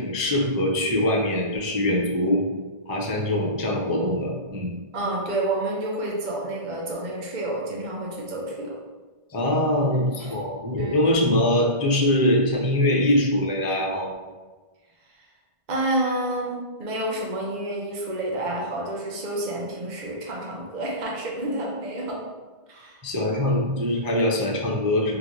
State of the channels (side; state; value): left; late; 1.5 ms